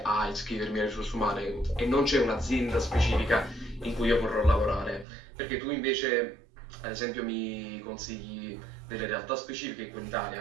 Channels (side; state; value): left; drops out; at 5.1 s